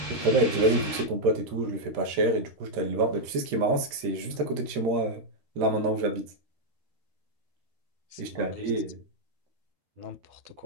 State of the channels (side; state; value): left; late; 13 ms